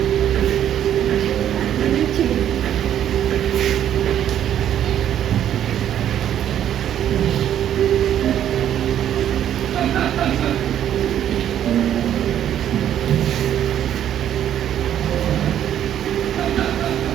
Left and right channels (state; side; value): quieter; left; 10.5 dB